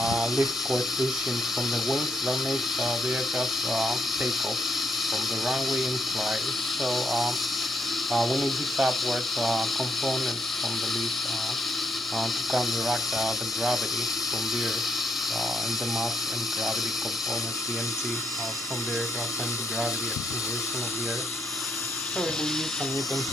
lift coefficient from the wings that makes the aircraft take off from the runway and fly. So we need this upward component from the lift to counteract the gravity from the earth and the mass and gravity component, the mg from the aircraft and the gravity acceleration of the earth. So we use some Newton's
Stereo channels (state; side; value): normal; both; correlation 0.77